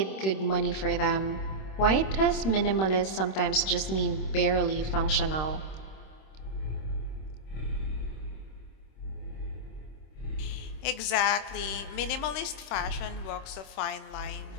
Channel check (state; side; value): late; right; 26 ms